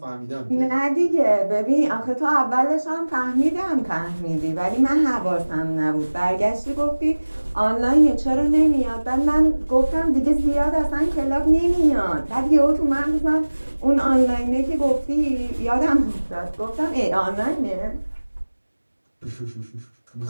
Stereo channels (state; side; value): inverted; both; correlation -1.00